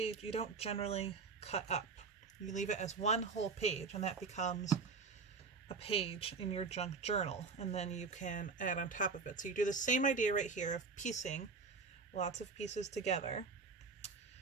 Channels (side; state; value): left; quieter; 4.7 dB